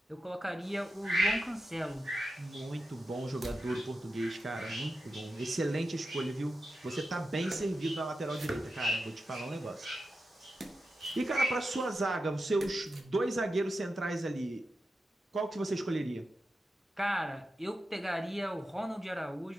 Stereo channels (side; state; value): both; normal; correlation 0.90